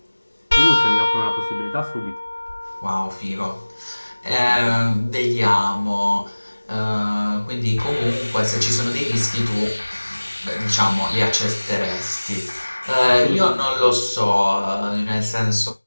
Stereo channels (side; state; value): both; inverted; correlation -1.00